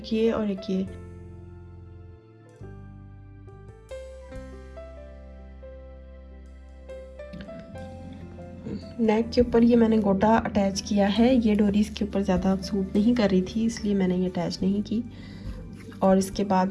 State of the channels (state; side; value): identical; both; correlation 1.00